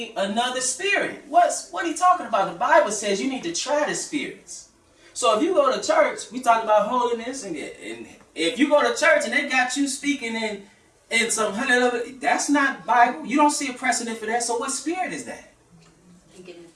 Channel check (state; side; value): identical; both; correlation 1.00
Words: another spirit. What are you talking about? The Bible says you need to try the spirits. So if you go to church, we talk about holiness, and if you go to church and they got you speaking in some hundred, that's not Bible. You don't see a precedent for that. So what spirit is that? Speaking in